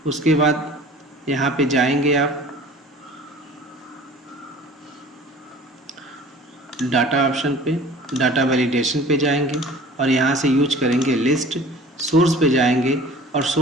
उसके बाद यहाँ पे जाएंगे, आप डाटा ऑप्शन पे, डाटा वैलिडेशन पे जाएंगे और यहाँ से यूज करेंगे लिस्ट। सोर्स पे जाएंगे और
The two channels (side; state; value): both; normal; correlation 0.46